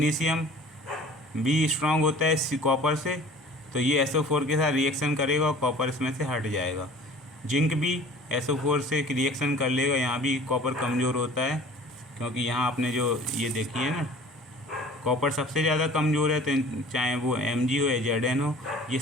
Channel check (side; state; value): both; normal; correlation 0.46